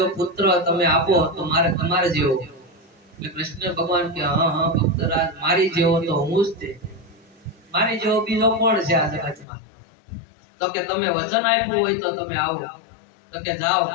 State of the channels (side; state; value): right; drops out; at 9.5 s